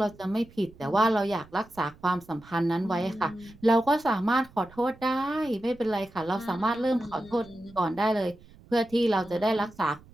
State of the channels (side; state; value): right; noise; rumble, 24 dB below the sound